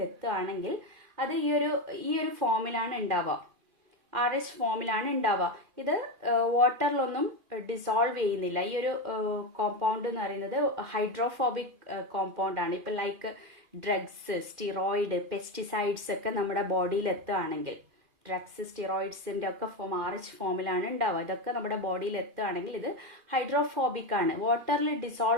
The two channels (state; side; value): late; left; 2.5 ms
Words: എത്തുകയാണെങ്കിൽ അത് ഈ ഒരു ഫോമിലാണ് ഉണ്ടാവുക, RH ഫോമിലാണ് ഉണ്ടാവുക. ഇത് വാട്ടറിലൊന്നും ഡിസോൾവ് ചെയ്യുന്നില്ല. ഈ ഒരു കോമ്പൗണ്ട് എന്ന് പറയുന്നത് ഹൈഡ്രോഫോബിക് കോമ്പൗണ്ട് ആണ്. ഇപ്പം ലൈക്ക് ഡ്രഗ്സ്, സ്റ്റിറോയിഡ്, പെസ്റ്റിസൈഡ്സ് ഒക്കെ നമ്മുടെ ബോഡിയിൽ എത്തുകയാണെങ്കിൽ, ഡ്രഗ്സ് സ്റ്റിറോയിഡ്സിന്റെ ഒക്കെ ഫോം RH ഫോമിലാണ് ഉണ്ടാവുക. ഇതൊക്കെ നമ്മുടെ ബോഡിയിൽ എത്തുകയാണെങ്കിൽ ഇത് ഹൈഡ്രോഫോബിക് ആണ്, വാട്ടറിൽ